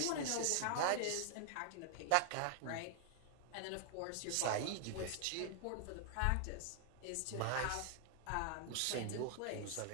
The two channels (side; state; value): both; different; correlation 0.00